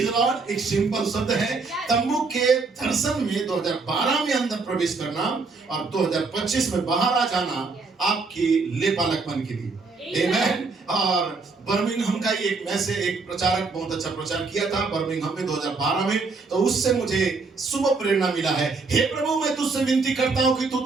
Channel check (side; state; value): left; quieter; 4.2 dB